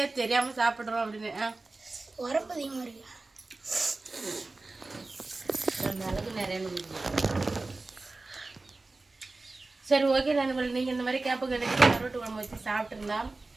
ஏன் தெரியாமல் சாப்பிட்றோம் அப்படின்னு. உரப்பு அதிகமாக இருக்கு. மிளகு நிறைய. சரி, ஓகே நண்பர்கள், நீங்கள் இந்த மாதிரி கேப்பு கிடைச்சி கருவாட்டு குழம்பு வச்சு சாப்பிட்ருந்தா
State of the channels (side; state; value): left; quieter; 3.3 dB